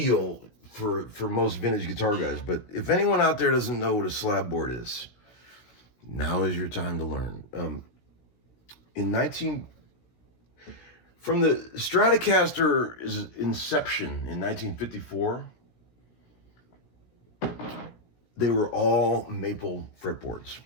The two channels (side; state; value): right; late; 16 ms